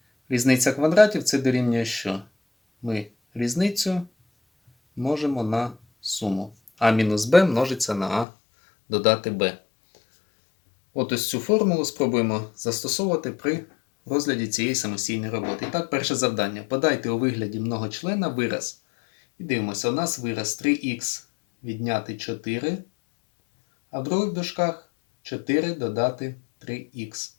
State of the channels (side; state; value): right; drops out; at 8.2 s